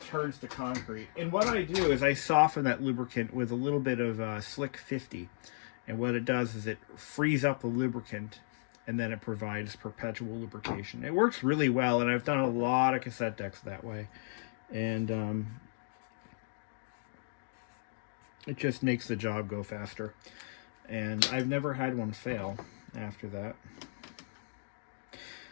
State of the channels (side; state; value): right; silent; digital silence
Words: turns to concrete. And what I do is I soften that lubricant with a little bit of Slick 50. And what it does is it frees up the lubricant, and then it provides perpetual lubrication. It works really well, and I've done a lot of cassette decks that way. And it just makes the job go faster. And I've never had one fail after that.